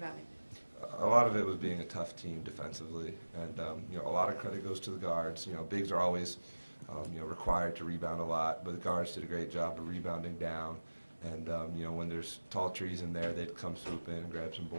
A lot of it was being a tough team defensively, and a lot of credit goes to the guards. Bigs are always required to rebound a lot, but the guards did a great job of rebounding down. And when there's tall trees in there, they'd come swoop in and grab some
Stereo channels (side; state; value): both; inverted; correlation -1.00